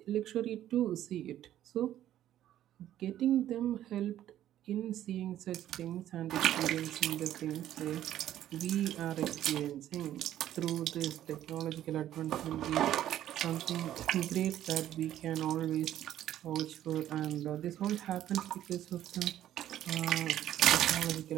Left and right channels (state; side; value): quieter; left; 12.2 dB